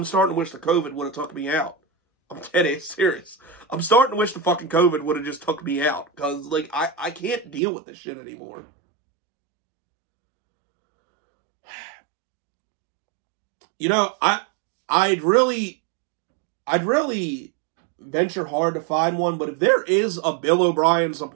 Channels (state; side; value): drops out; left; at 7.6 s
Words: starting to wish the COVID would have took me out. I'm dead serious. I'm starting to wish the fucking COVID would have just took me out. Because, like, I can't deal with this shit anymore. You know, I'd really venture hard to find one, but if there is a Bill O'Brien